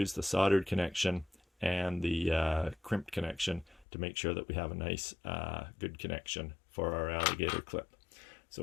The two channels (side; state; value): right; drops out; at 3.9 s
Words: the soldered connection and the crimped connection to make sure that we have a nice good connection for our alligator clip.